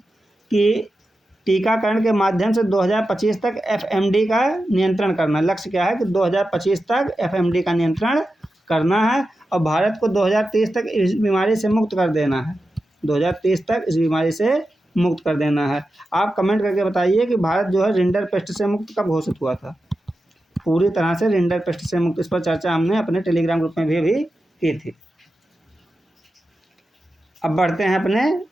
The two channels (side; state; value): both; normal; correlation 0.91